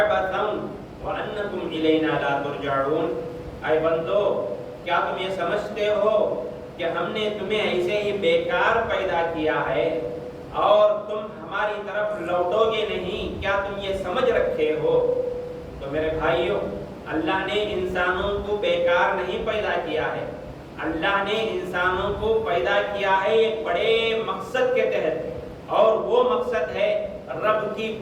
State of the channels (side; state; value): both; identical; correlation 1.00